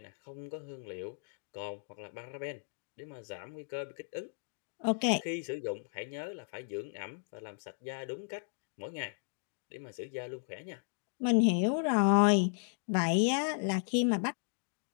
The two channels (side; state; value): right; silent; digital silence